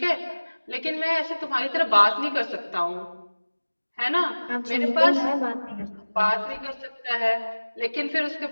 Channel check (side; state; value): both; inverted; correlation -1.00